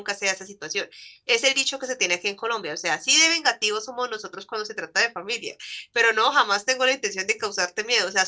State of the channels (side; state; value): both; identical; correlation 1.00